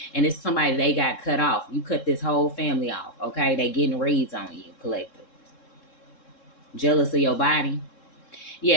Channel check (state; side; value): late; right; 3.7 ms